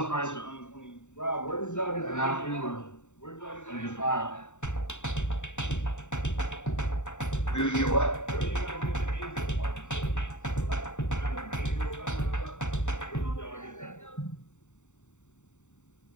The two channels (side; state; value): right; late; 0.84 ms